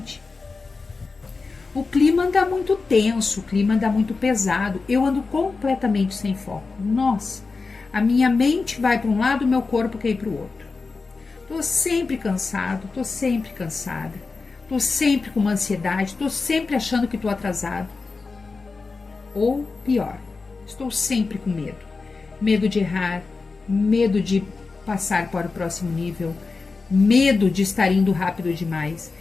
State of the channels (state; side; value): quieter; right; 4.2 dB